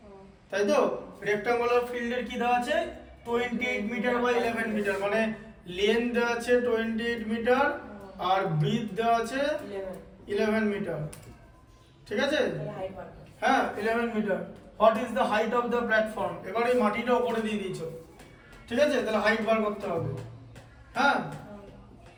তাই তো রেক্ট্যাঙ্গুলার ফিল্ডের কি দেওয়া আছে 28 মিটার বাই 11 মিটার মানে লেন্থ দেওয়া আছে 28 মিটার আর ব্রিথ দেওয়া আছে 11 মিটার ঠিক আছে হ্যাঁ 11 metre what is the height of the platform এবার এই মাটিটা উপরে দিয়ে দিয়েছো ঠিক আছে তাহলে হাইট বার করতে হবে হ্যাঁ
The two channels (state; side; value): identical; both; correlation 1.00